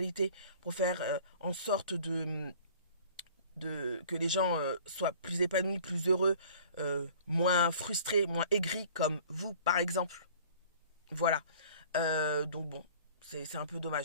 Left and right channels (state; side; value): inverted; both; correlation -0.49